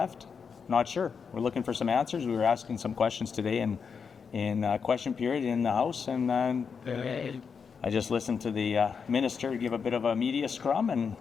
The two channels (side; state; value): right; quieter; 6.1 dB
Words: Not sure. We're looking for some answers. We were asking some questions today in question period in the House, and I just listened to the minister give a bit of a media scrum, and